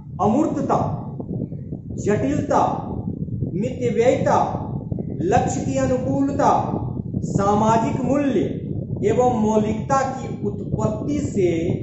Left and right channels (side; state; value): both; identical; correlation 1.00